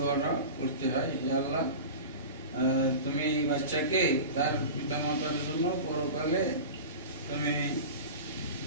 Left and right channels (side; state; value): both; inverted; correlation -0.31